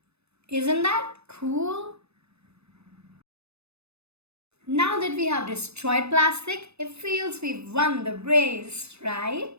Isn't that cool? Now that we have destroyed plastic, it feels we've won the race,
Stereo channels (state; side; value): late; left; 0.80 ms